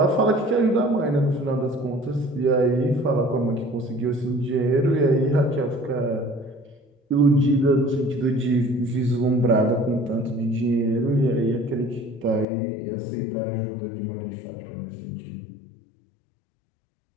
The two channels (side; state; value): right; drops out; at 12.5 s